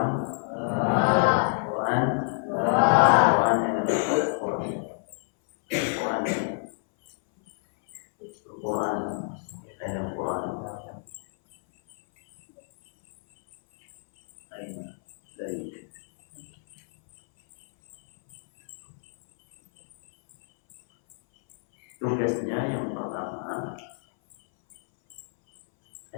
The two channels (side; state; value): right; silent; 60 dB below the other